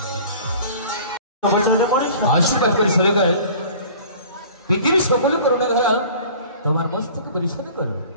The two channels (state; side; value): inverted; both; correlation -0.45